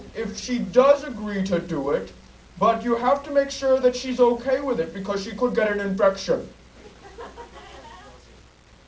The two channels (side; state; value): both; identical; correlation 1.00